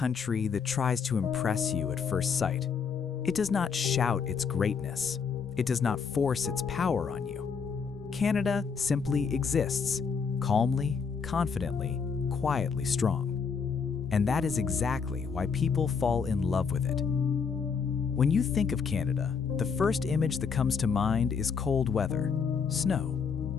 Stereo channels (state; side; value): quieter; right; 5.9 dB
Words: that tries to impress you at first sight. It does not shout its greatness. It does not force its power on you. Canada simply exists, calmly, confidently, quietly strong. And that is exactly why people fall in love with it. When you think of Canada, the first image that comes to mind is cold weather, snow,